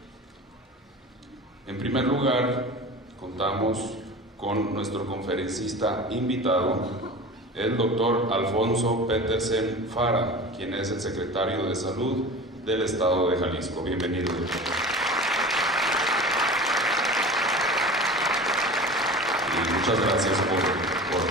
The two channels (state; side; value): normal; both; correlation 0.35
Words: En primer lugar, contamos con nuestro conferencista invitado, el doctor Alfonso Petersen Fara, quien es el secretario de Salud del Estado de Jalisco. Bienvenido, doctor. Y muchas gracias por